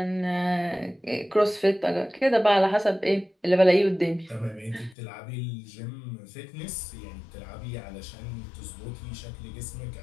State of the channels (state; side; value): drops out; right; at 5.0 s